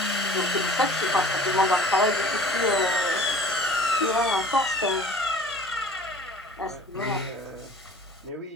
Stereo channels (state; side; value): normal; both; correlation 0.47